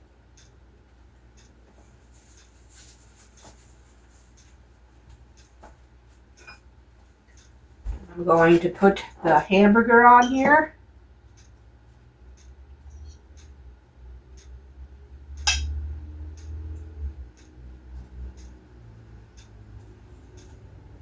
I'm going to put the hamburger on here.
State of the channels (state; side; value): identical; both; correlation 1.00